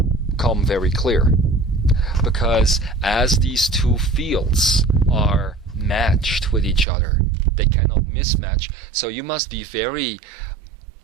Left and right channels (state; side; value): drops out; left; at 6.9 s